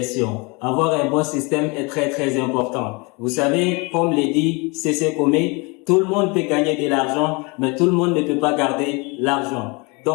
Avoir un bon système est très très important. Vous savez, comme le dit C.C. Comé, tout le monde peut gagner de l'argent, mais tout le monde ne peut pas garder l'argent.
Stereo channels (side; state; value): right; quieter; 28.8 dB